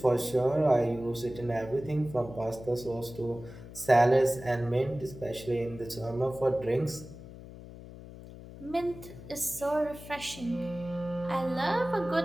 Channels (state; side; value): noise; left; hum, 15 dB below the sound